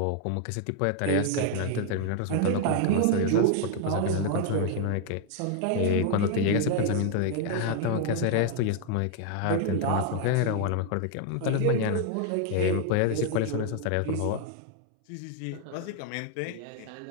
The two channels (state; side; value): different; both; correlation 0.00